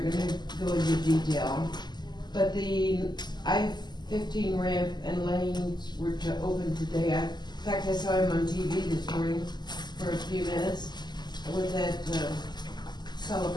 gonna go into detail. But the I-15 ramp and lanes were to open today. In fact, I saw him on TV this morning for a few minutes with that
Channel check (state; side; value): late; right; 0.21 ms